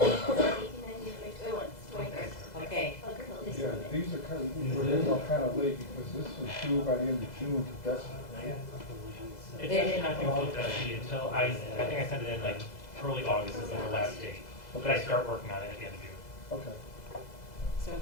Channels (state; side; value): late; right; 2.0 ms